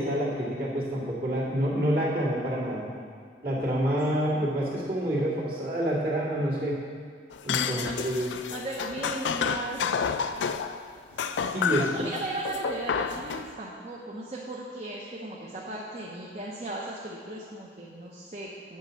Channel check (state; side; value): normal; both; correlation 0.45